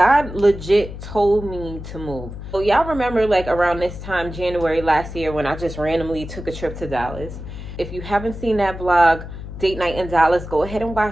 legit told me to move. So y'all remember like around this time, January last year, when I just randomly took a trip to Dallas. If you haven't seen that vlog, Date Night in Dallas, go ahead and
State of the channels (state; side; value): noise; left; hum, 10 dB below the sound